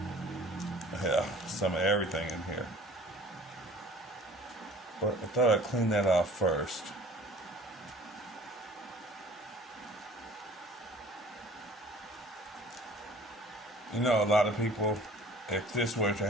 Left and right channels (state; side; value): normal; both; correlation 0.48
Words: some of everything in here. But I thought I'd clean that off first. You know, a lot of people, if this were to